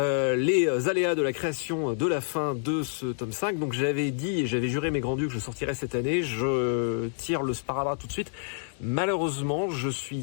aléas de la création de la fin de ce tome 5. Donc j'avais dit et j'avais juré mes grands dieux que je sortirais cette année. Je tire le sparadrap tout de suite. Malheureusement, je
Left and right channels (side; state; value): right; silent; digital silence